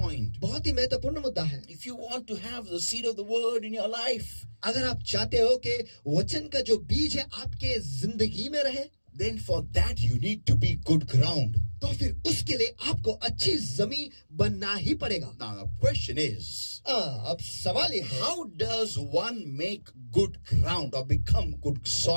बहुत ही महत्वपूर्ण मुद्दा है। If you want to have the seed of the word in your life, अगर आप चाहते हो कि वचन का जो बीज है आपके जिंदगी में रहे, then for that you need to be good ground. तो फिर उसके लिए आपको अच्छी जमीन बनना ही पड़ेगा। Now the question is, अब सवाल ये है how does one make good ground or become good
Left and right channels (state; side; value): inverted; both; correlation -1.00